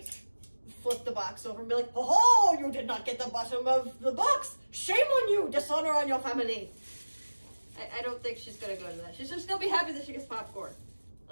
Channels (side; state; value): both; inverted; correlation -1.00